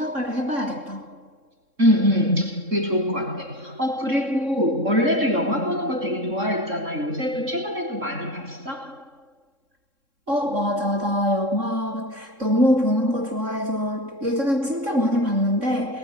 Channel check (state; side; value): late; left; 3.7 ms